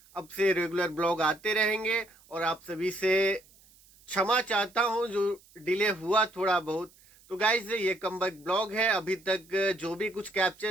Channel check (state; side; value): noise; right; hiss, 28 dB below the sound